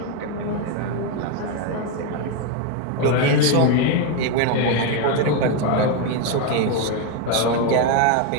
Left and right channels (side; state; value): both; different; correlation 0.02